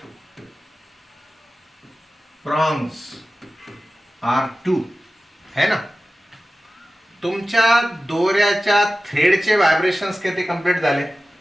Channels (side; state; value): both; normal; correlation 0.95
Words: prongs are 2, है ना? तुमच्या दोऱ्याच्या थ्रेडचे व्हायब्रेशन्स किती कंप्लीट झाले?